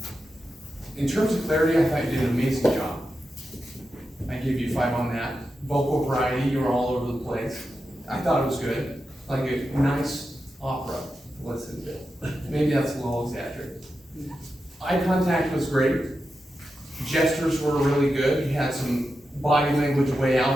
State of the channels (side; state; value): both; normal; correlation 0.89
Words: in terms of clarity, I thought you did an amazing job. I give you 5 on that. Vocal variety, you were all over the place. I thought it was good. Like a nice opera to listen to. Maybe that's a little exaggerated. Eye contact was great. Gestures were really good. You had some body language way